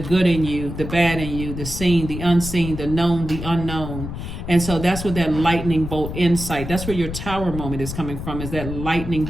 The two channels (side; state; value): left; noise; rumble, 7 dB below the sound